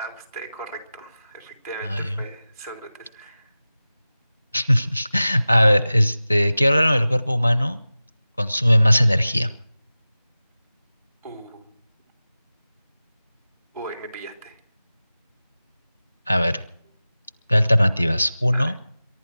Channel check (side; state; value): both; inverted; correlation -0.97